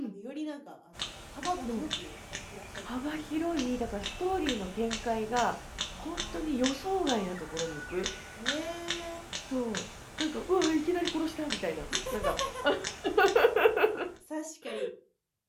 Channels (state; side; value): identical; both; correlation 1.00